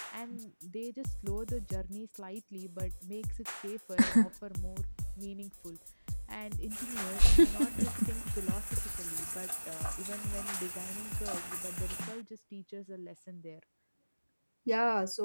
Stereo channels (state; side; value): inverted; both; correlation -1.00